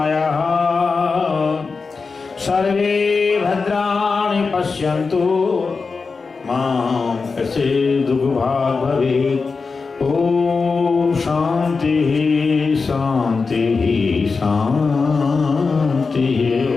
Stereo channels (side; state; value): right; quieter; 4.6 dB